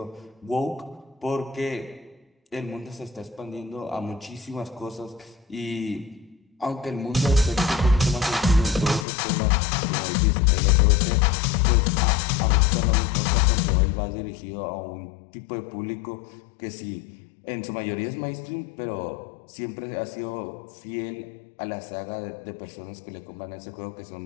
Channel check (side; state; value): right; drops out; at 9.1 s